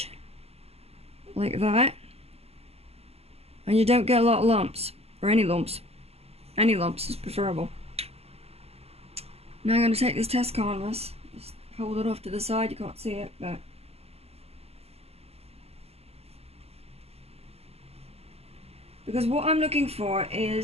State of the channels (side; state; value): left; late; 0.29 ms